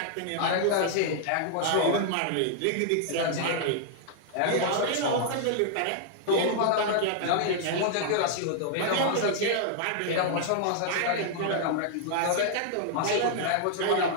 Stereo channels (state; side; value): different; both; correlation -0.01